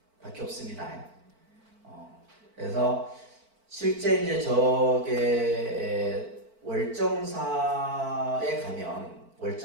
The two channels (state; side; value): late; left; 4.5 ms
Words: 밖에 없습니다. 그래서 실제 이제 저게 월정사에 가면